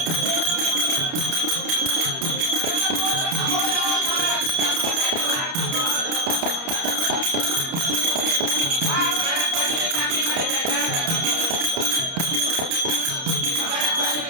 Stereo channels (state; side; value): late; left; 30 ms